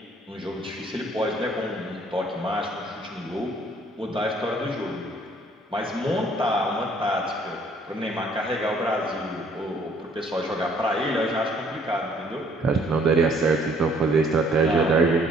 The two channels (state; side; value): normal; both; correlation 0.61